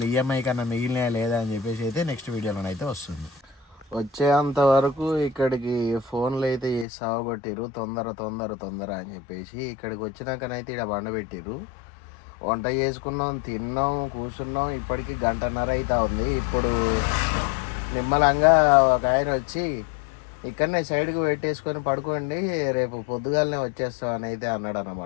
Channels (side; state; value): right; drops out; at 6.9 s